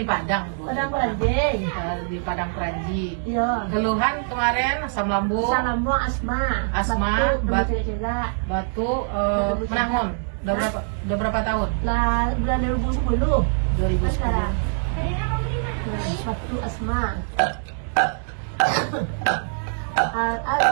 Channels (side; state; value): left; silent; digital silence